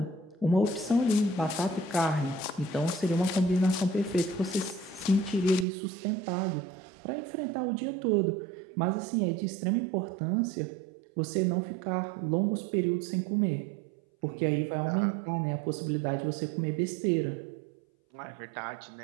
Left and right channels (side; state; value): left; drops out; at 5.7 s